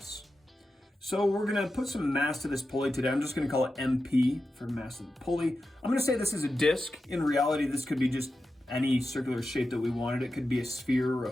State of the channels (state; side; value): normal; both; correlation 0.91